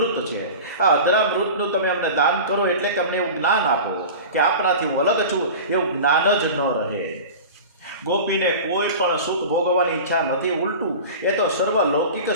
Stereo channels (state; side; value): inverted; both; correlation -0.34